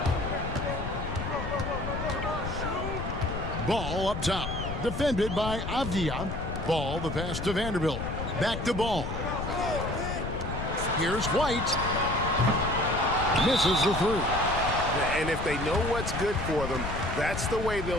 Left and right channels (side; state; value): left; noise; rumble, 5 dB below the sound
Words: Ball up top. Defended by Avdia. Ball, the pass to Vanderbilt. Back to Ball. Here's White. Misses the 3. And if they know what's good for them, that's the way they'll